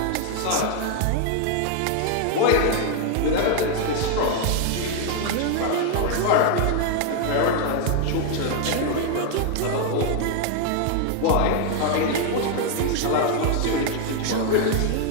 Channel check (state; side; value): different; both; correlation 0.00